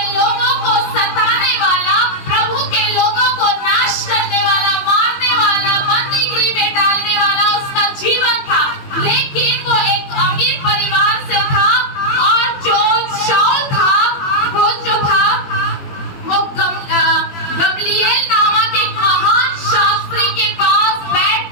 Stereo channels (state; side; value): late; right; 21 ms